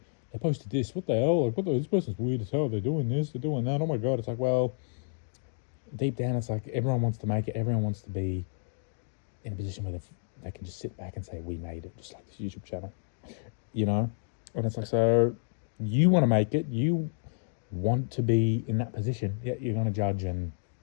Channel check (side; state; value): right; silent; digital silence